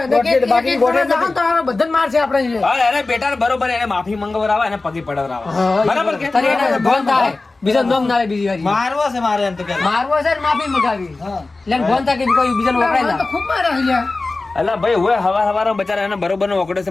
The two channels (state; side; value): quieter; right; 3.4 dB